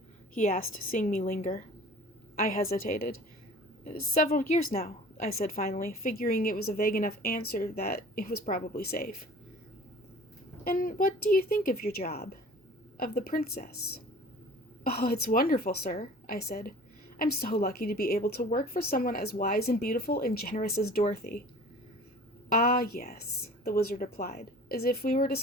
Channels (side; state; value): both; normal; correlation 0.45